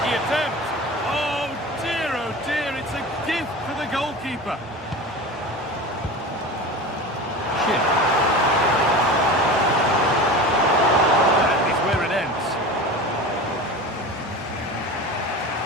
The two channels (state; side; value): normal; both; correlation 0.32